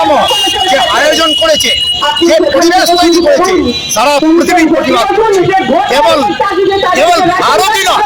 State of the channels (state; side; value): identical; both; correlation 1.00